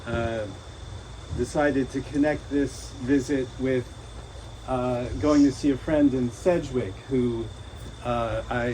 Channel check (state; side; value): identical; both; correlation 1.00